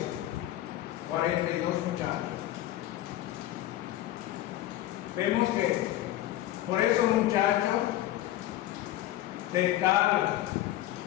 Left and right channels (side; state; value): right; quieter; 14.2 dB